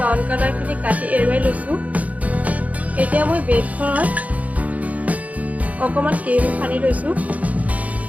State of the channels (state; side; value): late; left; 0.071 ms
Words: কালাৰখিনি কাটি এৰুৱাই লৈছোঁ। এতিয়া মই ব্ৰেডখনত অকণমান ক্ৰীম সানি লৈছোঁ।